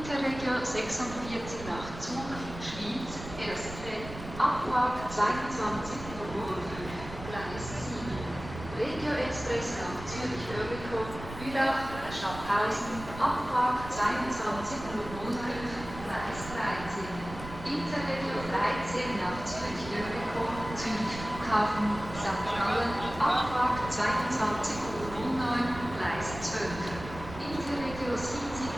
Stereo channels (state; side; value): noise; right; rumble, 12 dB below the sound